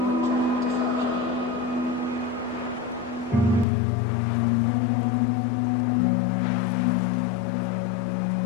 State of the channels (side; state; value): right; drops out; at 3.7 s